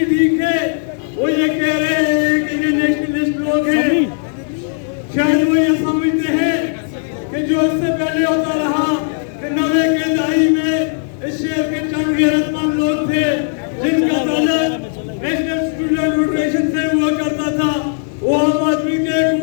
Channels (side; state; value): right; silent; digital silence